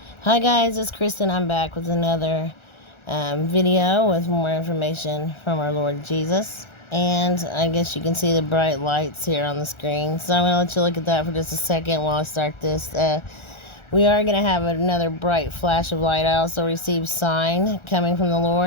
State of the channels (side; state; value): right; late; 1.4 ms